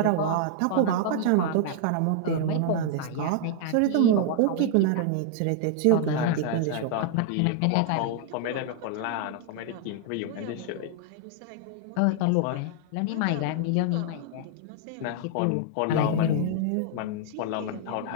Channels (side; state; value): both; different; correlation -0.01